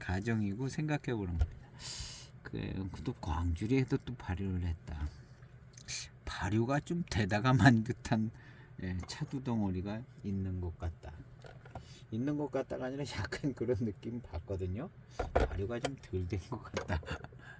생각해 보는 겁니다. 또 광주리에도 또 발효를 했다. 발효가 좀 되다가만 듯한 차두 덩어리가 있는 것 같다. 있는 것 같다가 아니라 약간 그런 느낌 받거든요. 발효가 좀 덜 된 것 같다.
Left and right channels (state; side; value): identical; both; correlation 1.00